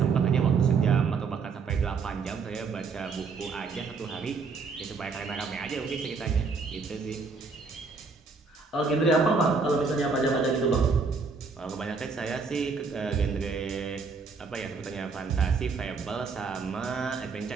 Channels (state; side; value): quieter; left; 4.7 dB